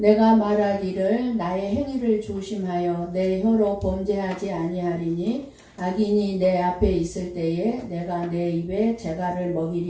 말하기를 나의 행위를 조심하여 내 혀로 범죄하지 아니하리니 악인이 내 앞에 있을 때에 내가 내 입에 재갈을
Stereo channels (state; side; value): identical; both; correlation 1.00